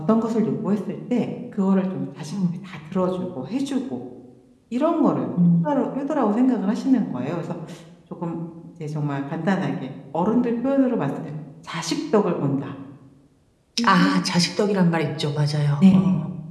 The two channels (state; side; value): identical; both; correlation 1.00